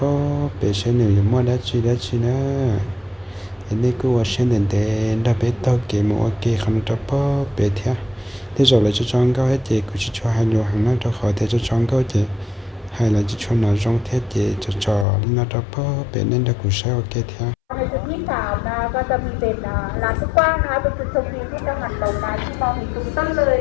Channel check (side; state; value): right; drops out; at 15.1 s